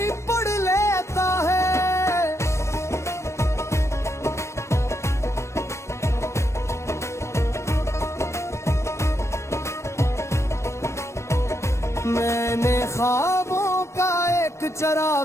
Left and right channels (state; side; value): late; right; 0.13 ms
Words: पढ़ लेता है। मैंने ख्वाबों का एक